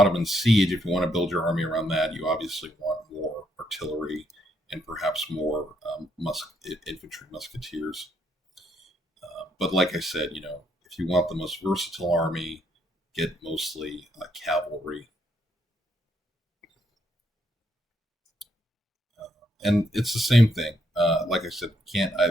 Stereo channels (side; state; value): both; normal; correlation 0.74